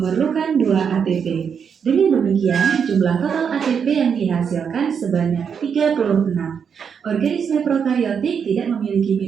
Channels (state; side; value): quieter; left; 6.9 dB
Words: 2 ATP. Dengan demikian, jumlah total ATP yang dihasilkan sebanyak 36. Organisme prokariotik tidak memiliki